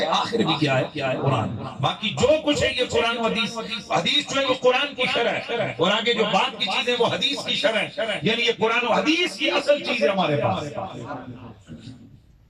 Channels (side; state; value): both; identical; correlation 1.00